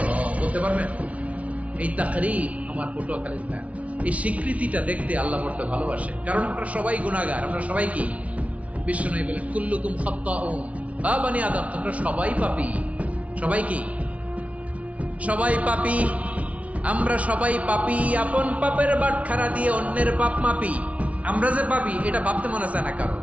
রব। বলতে পারবেন? এই তাকরীর আমার পটুয়াখালীর ভাই, এই স্বীকৃতিটা দেখতে আল্লাহ বড় ভালোবাসে, কারণ আমরা সবাই গুনাহগার, আমরা সবাই কি? বিশ্বনবী বলেন, কুল্লুকুম খাত্তাউন, আ বানি আদম, তোমরা সবাই পাপী। সবাই কি? সবাই পাপী। আমরা সবাই পাপী, আপন পাপের বাটখারা দিয়ে অন্যের পাপ মাপি। আমরা যে পাপী এটা ভাবতে মনে চায় না কারো,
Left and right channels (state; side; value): late; left; 0.065 ms